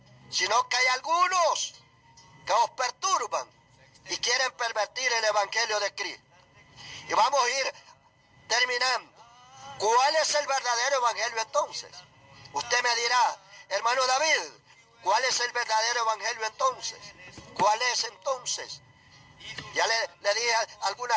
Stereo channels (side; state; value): both; identical; correlation 1.00